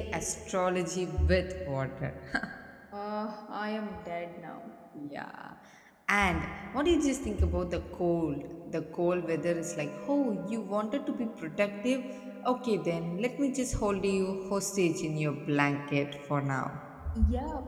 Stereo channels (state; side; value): identical; both; correlation 1.00